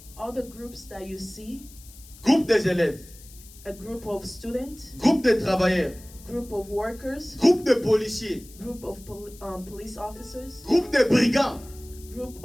All the groups that you see, groupe des élèves, a group of students, groupe de travailleurs, group of workers, groupe de policiers, group of police officers, groupe de brigands, group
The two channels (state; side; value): noise; left; hiss, 21 dB below the sound